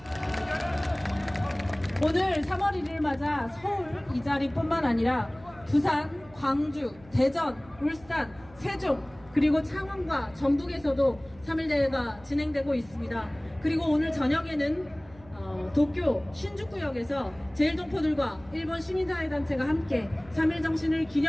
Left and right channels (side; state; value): right; noise; hum, 24 dB below the sound